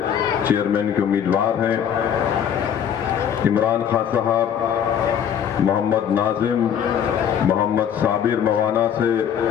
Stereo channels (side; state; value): right; quieter; 8.7 dB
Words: चेयरमैन के उम्मीदवार हैं, इमरान खान साहब, मोहम्मद नाजिम, मोहम्मद साबिर मवाना से,